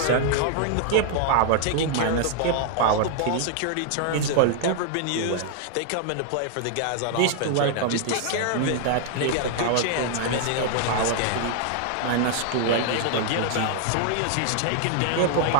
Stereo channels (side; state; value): both; different; correlation 0.00